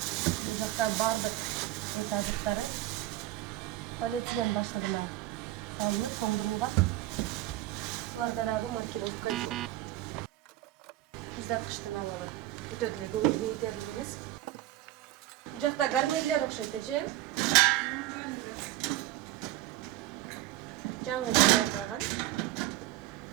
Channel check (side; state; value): left; quieter; 15.5 dB